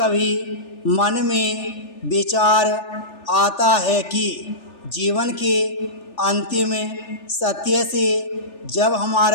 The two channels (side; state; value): right; late; 3.4 ms